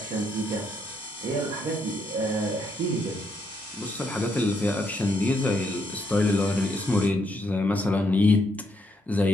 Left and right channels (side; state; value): both; normal; correlation 0.75